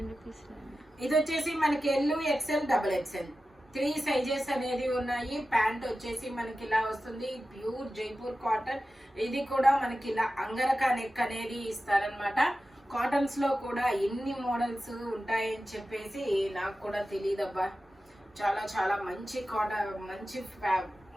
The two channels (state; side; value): normal; both; correlation 0.94